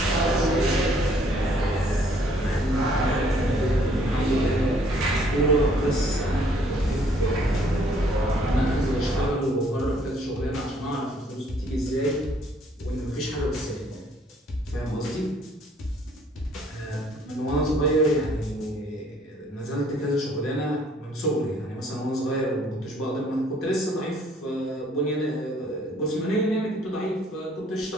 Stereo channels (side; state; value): both; normal; correlation 0.62